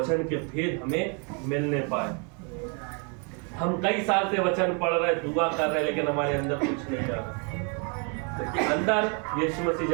के भेद हमें मिलने पाए। हम कई साल से वचन पढ़ रहे, दुआ कर रहे, लेकिन हमारे अंदर कुछ नहीं जा रहा, क्योंकि अंदर यीशु मसीह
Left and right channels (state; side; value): quieter; left; 36.7 dB